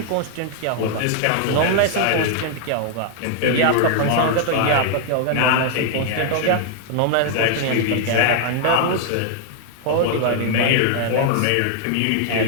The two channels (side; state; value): both; different; correlation 0.00